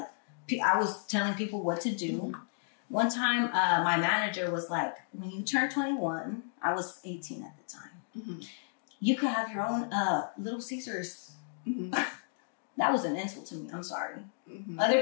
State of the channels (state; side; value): silent; right; digital silence